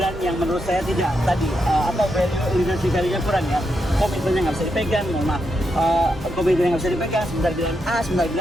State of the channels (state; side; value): normal; both; correlation 0.83